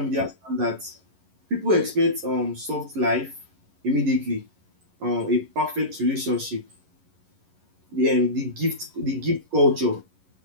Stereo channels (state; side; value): late; left; 11 ms